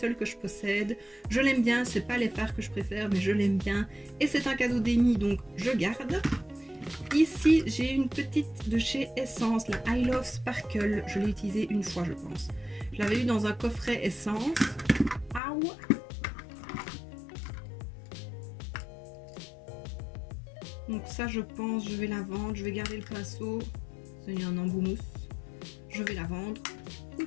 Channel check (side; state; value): right; drops out; at 15.4 s